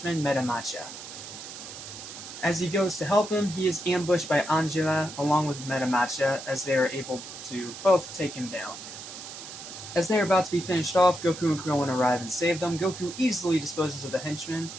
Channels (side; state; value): right; noise; hiss, 12 dB below the sound